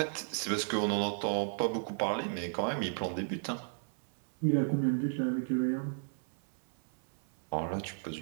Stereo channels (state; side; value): silent; left; 55 dB below the other